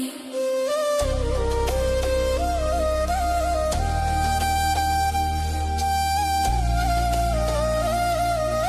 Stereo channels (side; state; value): both; identical; correlation 1.00